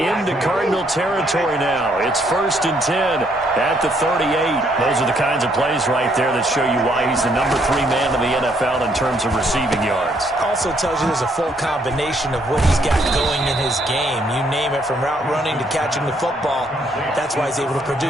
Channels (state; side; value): normal; both; correlation 0.70